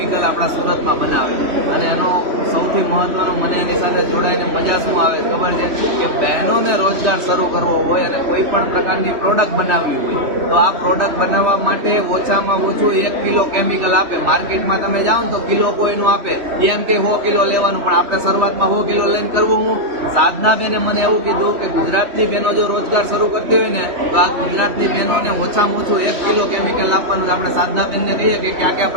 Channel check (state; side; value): late; left; 3.1 ms